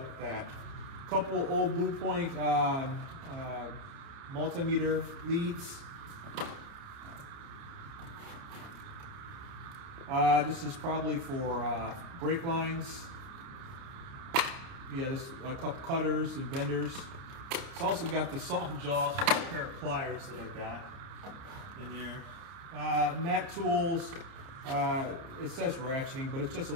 with that. Couple old Blue Point multimeter leads. This is probably for brake lines. Yeah, this a couple cutters and benders. It's also got the soft jaws for a pair of pliers that I got in there. Mac Tools. It says ratcheting, but it's just a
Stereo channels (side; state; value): left; late; 30 ms